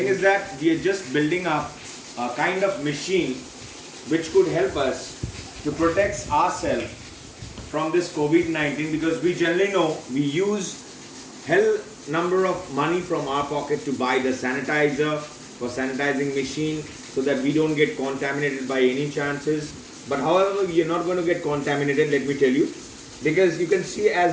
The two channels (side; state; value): both; identical; correlation 1.00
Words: is that we are just building up a kind of machine which could help us to protect ourselves from this COVID-19, because we generally know we use hell number of money from our pocket to buy the sanitizer for sanitizing machine so that we don't get contaminated by any chances. But however, we are not going to get contaminated, let me tell you, because you can see